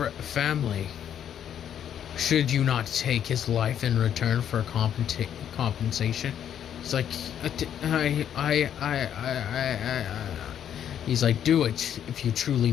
Should you not take his life in return for compensation? He's like, he's like, do it if you truly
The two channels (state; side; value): quieter; right; 9.6 dB